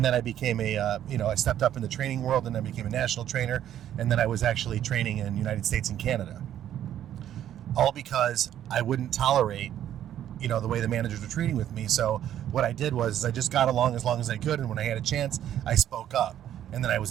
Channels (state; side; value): quieter; left; 11.0 dB